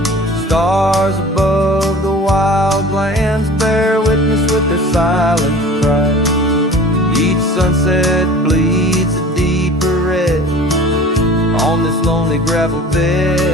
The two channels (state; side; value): normal; both; correlation 0.42